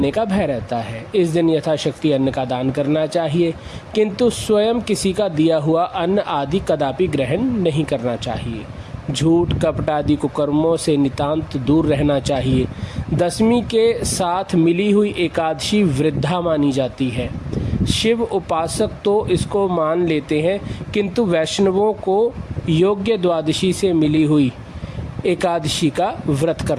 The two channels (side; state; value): both; identical; correlation 1.00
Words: का भय रहता है। इस दिन यथाशक्ति अन्न का दान करना चाहिए, किंतु स्वयं किसी का दिया हुआ अन्न आदि कदापि ग्रहण नहीं करना चाहिए। झूठ, कपट आदि कुकर्मों से नितांत दूर रहना चाहिए। दशमी के साथ मिली हुई एकादशी वृद्धा मानी जाती है। शिव उपासक तो इसको मान लेते हैं, किंतु वैष्णवों को योग्य द्वादशी से मिली हुई एकादशी का व्रत